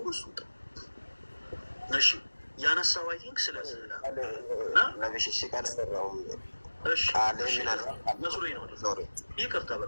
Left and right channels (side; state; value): both; inverted; correlation -1.00